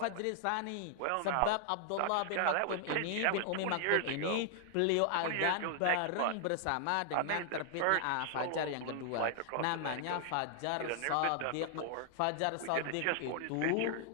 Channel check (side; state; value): both; different; correlation 0.00